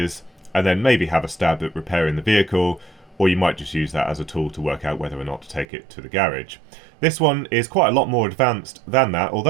and then maybe have a stab at repairing the vehicle, or you might just use that as a tool to work out whether or not to take it to the garage. This one is quite a lot more advanced than that.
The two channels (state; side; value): drops out; left; at 5.7 s